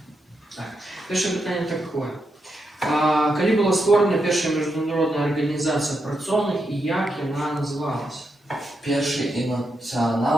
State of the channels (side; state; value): both; normal; correlation 0.84